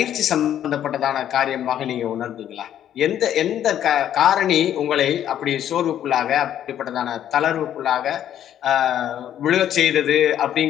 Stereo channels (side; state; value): right; quieter; 10.7 dB